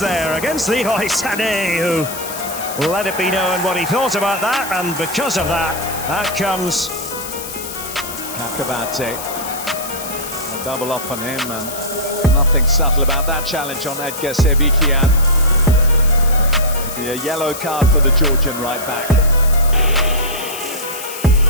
against Leroy Sané, who let it be known what he thought about that, and because of that, out comes Akabate. A double up on him, and nothing subtle about that challenge on Edgar Sebikian. Be a yellow card for the Georgian right back.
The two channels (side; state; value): left; noise; hiss, 9 dB below the sound